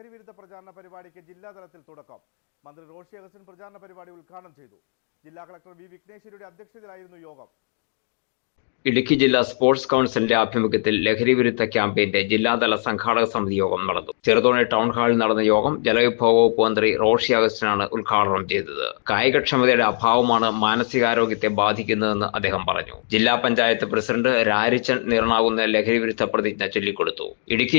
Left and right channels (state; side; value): silent; right; 64 dB below the other